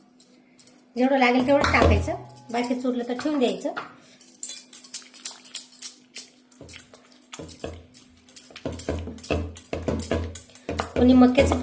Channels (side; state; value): both; identical; correlation 1.00